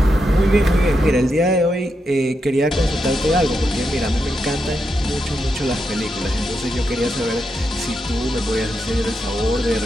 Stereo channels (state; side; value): normal; both; correlation 0.84